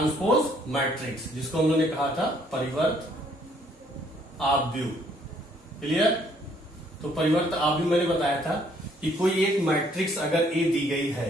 मैट्रिक्स जिसको हम लोगों ने कहा था परिवर्त आव्यूह। क्लियर? तो परिवर्त आव्यूह मैंने बताया था कि कोई एक मैट्रिक्स अगर ए दी गई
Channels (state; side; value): normal; both; correlation 0.65